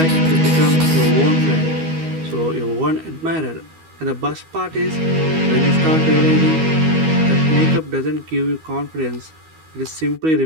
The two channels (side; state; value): left; late; 12 ms